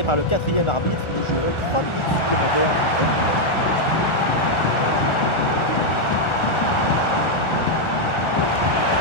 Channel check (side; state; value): right; late; 1.4 ms